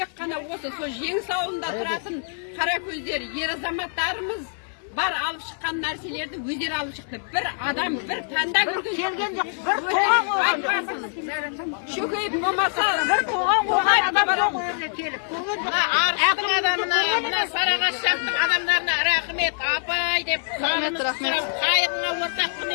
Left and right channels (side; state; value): right; silent; digital silence